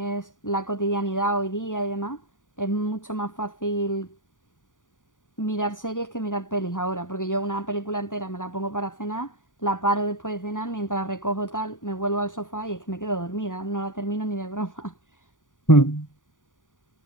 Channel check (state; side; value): late; right; 0.88 ms